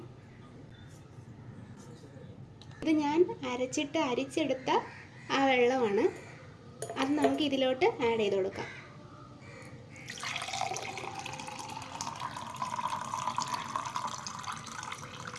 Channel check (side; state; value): both; identical; correlation 1.00